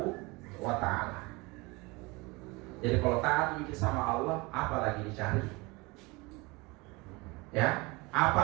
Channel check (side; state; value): left; quieter; 25.0 dB